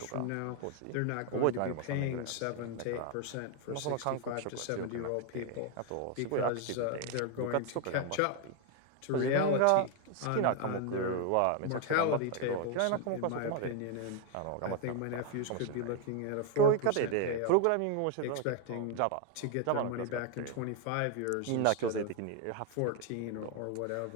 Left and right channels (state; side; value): different; both; correlation 0.01